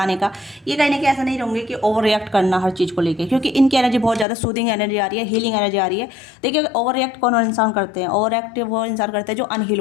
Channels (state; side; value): drops out; right; at 4.2 s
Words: का। ये कहीं ना कहीं ऐसा नहीं रहेंगे कि ओवर रिएक्ट करना हर चीज़ को लेके, क्योंकि इनकी एनर्जी बहुत ज़्यादा सूदिंग एनर्जी आ रही है, हीलिंग एनर्जी आ रही है। देखिए, ओवर रिएक्ट कौन इंसान करते हैं? ओवर रिएक्ट वो इंसान करते हैं जो अनहील